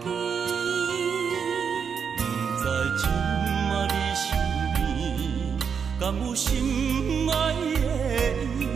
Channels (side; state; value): left; quieter; 6.7 dB